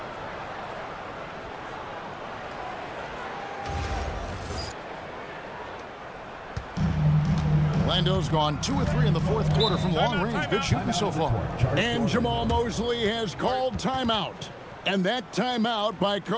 Orlando's gone 2 of 3 in the fourth quarter from long range. Good shooting so far. And Jamal Mosley has called timeout. And that timeout by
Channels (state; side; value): identical; both; correlation 1.00